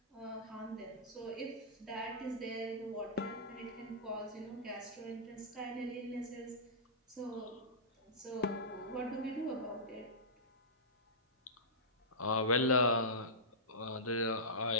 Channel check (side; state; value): both; normal; correlation -0.16